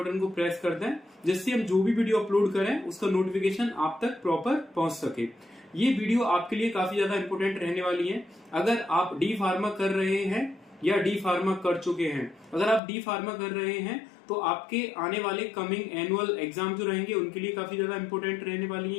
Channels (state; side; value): drops out; right; at 12.8 s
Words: को प्रेस कर दें, जिससे हम जो भी वीडियो अपलोड करें उसका नोटिफिकेशन आप तक प्रॉपर पहुंच सके। ये वीडियो आपके लिए काफी ज्यादा इंपॉर्टेंट रहने वाली है। अगर आप डी फार्मा कर रहे हैं या डी फार्मा कर चुके हैं, अगर आप डी फार्मा कर रहे हैं तो आपके आने वाले कमिंग एनुअल एग्जाम जो रहेंगे उनके लिए काफी ज्यादा इंपॉर्टेंट रहने वाली